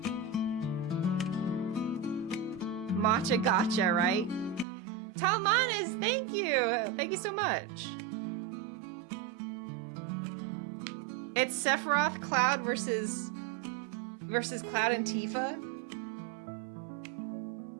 Matcha gotcha, right? Talmanes, thank you! Thank you so much. It's Sephiroth, Cloud versus Cloud and Tifa?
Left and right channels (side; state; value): left; drops out; at 4.7 s